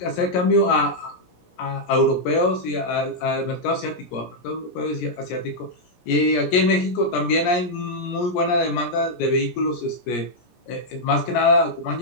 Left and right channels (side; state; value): right; late; 17 ms